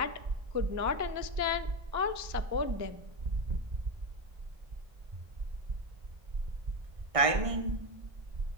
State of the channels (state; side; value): late; left; 1.6 ms